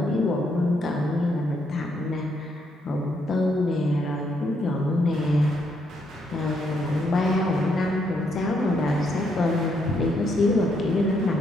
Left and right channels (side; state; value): both; normal; correlation 0.75